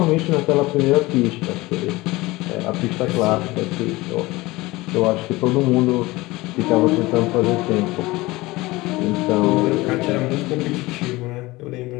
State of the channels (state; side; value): quieter; right; 20.6 dB